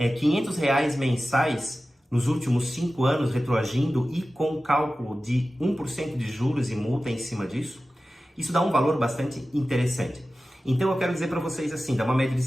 mensais nos últimos 5 anos retroagindo e com cálculo de 1% de juros e multa em cima disso? Isso dá um valor bastante interessante. Então eu quero dizer para vocês assim, dá uma média de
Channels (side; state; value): both; normal; correlation 0.95